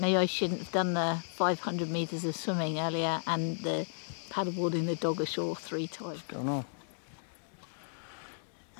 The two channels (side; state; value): right; silent; digital silence